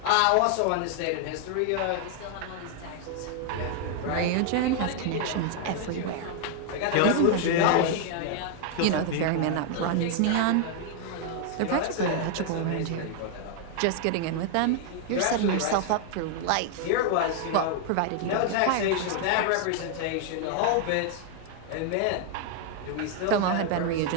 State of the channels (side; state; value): both; different; correlation 0.00